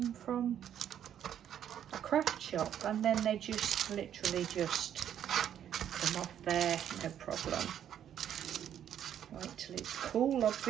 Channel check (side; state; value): left; quieter; 9.9 dB